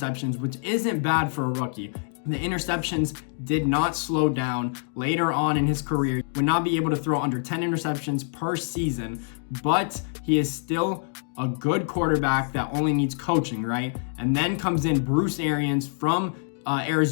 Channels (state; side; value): silent; right; 59 dB below the other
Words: which isn't bad for a rookie. The interceptions did not slow down later on in his career. He would not be able to throw under 10 interceptions per season, but he is still a good quarterback that only needs coaching, right? And then comes in Bruce Arians from